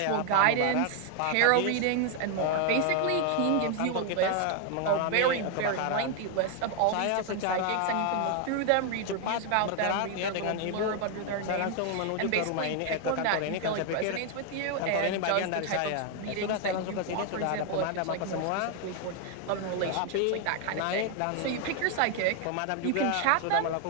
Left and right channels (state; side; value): different; both; correlation 0.00